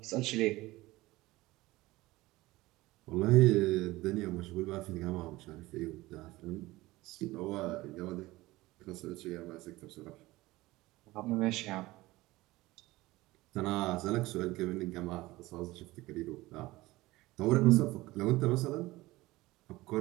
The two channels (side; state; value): left; quieter; 19.3 dB